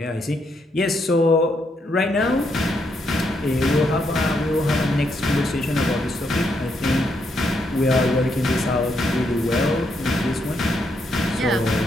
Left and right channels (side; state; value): both; normal; correlation 0.77